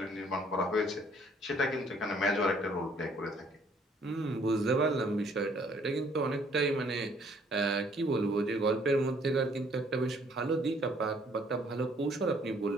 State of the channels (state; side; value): normal; both; correlation 0.62